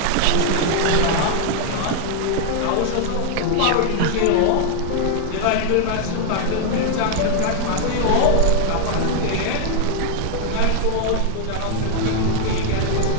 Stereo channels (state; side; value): different; both; correlation 0.00